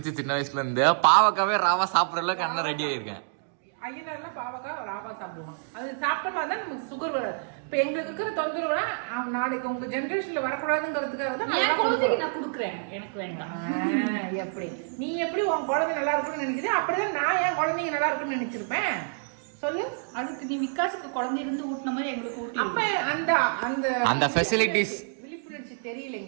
சின்ன வயசுல இருந்து பாவக்காவே ராவா சாப்பிடுற அளவுக்கு அண்ணன் ரெடி ஆயிருக்கேன். ஐயனார்லாம் பாவக்காய் ராவா சாப்பிடுவான். அது சாப்பிட்டோம்னா தான் நமக்கு சுகர் வராது. இப்ப எங்களுக்கு இருக்கிற தொந்தரவுனா நாளைக்கு உங்க ஜெனரேஷன்ல வரக்கூடாதுங்கிறதுக்காக தான் என் குழந்தைக்கு நான் கொடுக்குறேன். எனக்கு வேண்டாம். எப்படி நீ எப்படி உன் குழந்தை நல்லா இருக்குன்னு நினைக்கிறேன், அப்படிதான் நான் என் குழந்தைங்க நல்லா இருக்குன்னு நினைச்சிருப்பேன். சொல்லு. அதுக்கு நீ விகாசுக்கு குழந்தை இருந்து ஊட்டின மாதிரி எங்களுக்கு ஊட்டி. அப்ப அந்த அந்த அந்த ஃபெசிலிட்டிஸ் விழிப்புணர்ச்சி தெரியல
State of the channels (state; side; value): silent; left; digital silence